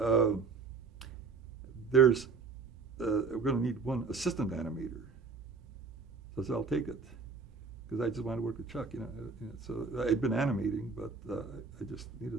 going to need one assistant animator." So I said, "I'll take it," because I just wanted to work with Chuck. So I'd been animating, but I just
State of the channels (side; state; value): left; quieter; 4.8 dB